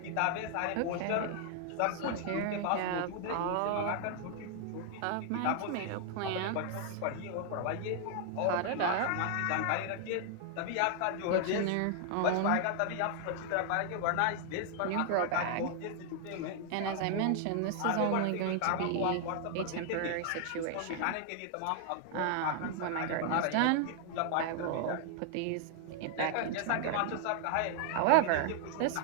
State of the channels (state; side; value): different; both; correlation 0.00